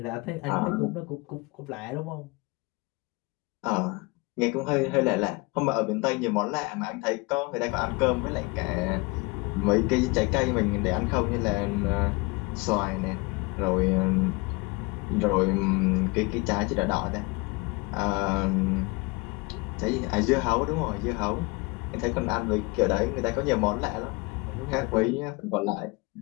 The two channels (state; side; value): quieter; right; 26.6 dB